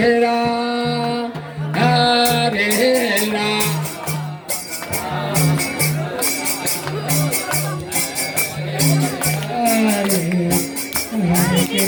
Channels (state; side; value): identical; both; correlation 1.00